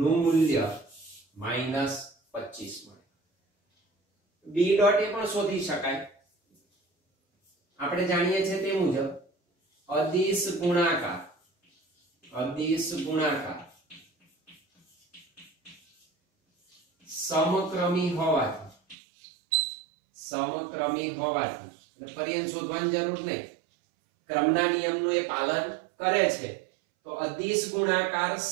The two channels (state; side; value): drops out; left; at 18.9 s